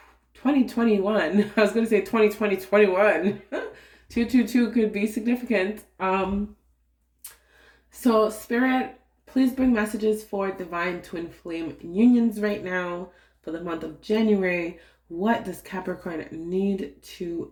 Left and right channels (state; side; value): identical; both; correlation 1.00